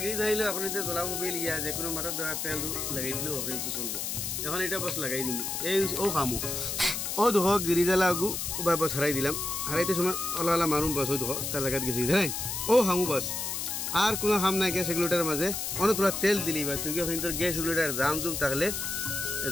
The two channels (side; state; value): left; noise; hiss, 3 dB below the sound